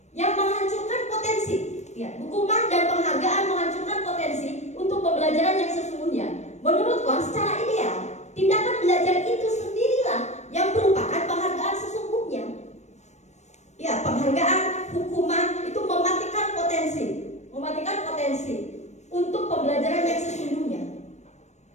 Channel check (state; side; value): late; right; 0.33 ms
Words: yang menghancurkan potensi. Ya, hukuman dan penghargaan menghancurkan potensi untuk pembelajaran yang sesungguhnya. Menurut Kon, secara ideal, tindakan belajar itu sendirilah yang merupakan penghargaan sesungguhnya. Ya, penghargaan, hukuman itu mematikan potensi untuk pembelajaran yang sesungguhnya.